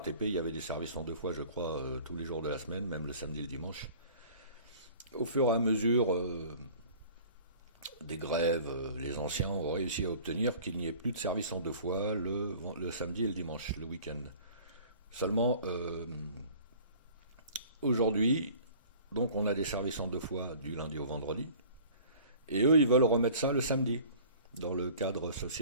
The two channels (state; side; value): inverted; both; correlation -0.47